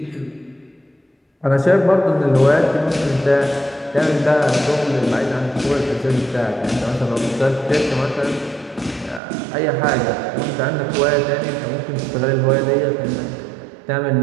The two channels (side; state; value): left; drops out; at 9.2 s